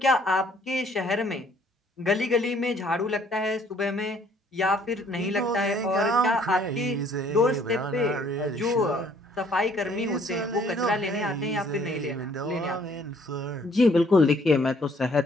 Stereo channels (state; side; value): normal; both; correlation 0.61